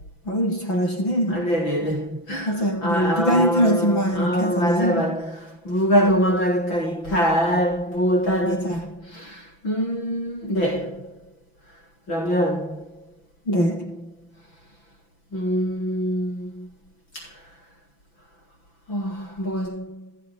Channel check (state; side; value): late; right; 6.0 ms